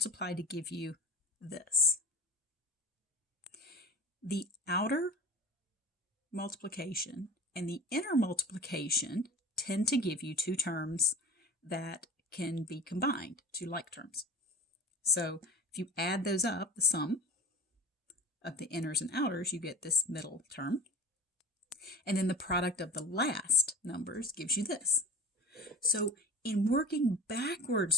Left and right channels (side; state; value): both; normal; correlation 0.36